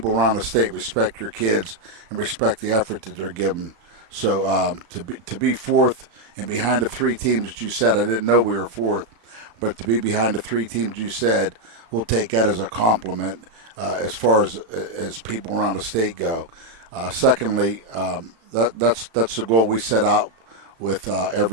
around the state respect your kids and respect the effort that they're giving So to be fourth and behind the three teams that you said, I didn't know we were fourth, but to be behind the three teams you said, we'll take that as a compliment as far as people around the state go. Secondly, that's the goal we set out with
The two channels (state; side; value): late; left; 35 ms